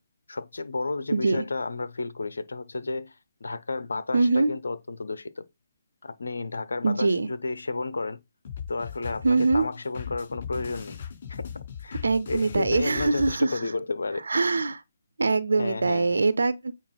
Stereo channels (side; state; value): both; inverted; correlation -0.92